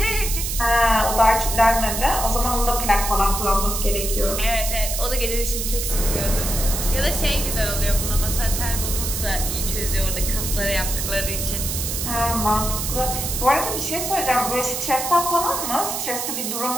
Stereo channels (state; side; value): noise; right; hiss, 3 dB below the sound